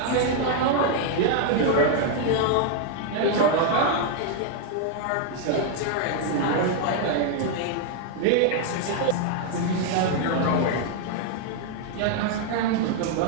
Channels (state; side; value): different; both; correlation 0.00